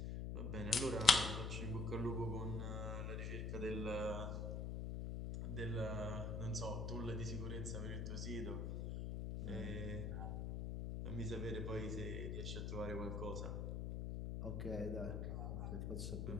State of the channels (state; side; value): noise; left; hum, 2 dB below the sound